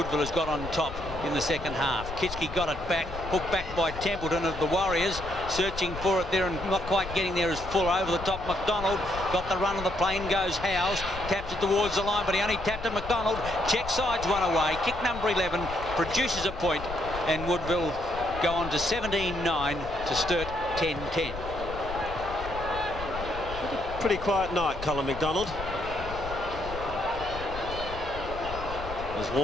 has got on top in the second half. Kitschke got it back, hooked back by Templeton of the Warriors, searching for it there and not quite getting there as full over the top. McDonald got the run of the plane, goes Howes, taps it towards the line, but he only tapped it. McDonald, check sides one away. Kick number 11 produces a point, and Woodville go on to 17-9 to Sturt 10-10. Pretty quiet night, Colin McDonald. As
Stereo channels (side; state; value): left; noise; rumble, 10 dB below the sound